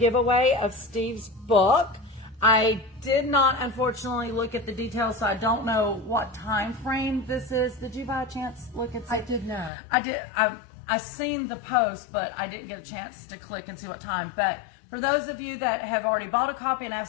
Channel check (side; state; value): right; drops out; at 9.7 s